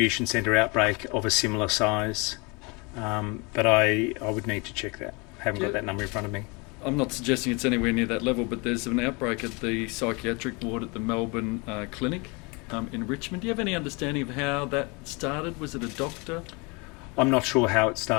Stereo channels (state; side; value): quieter; right; 29.0 dB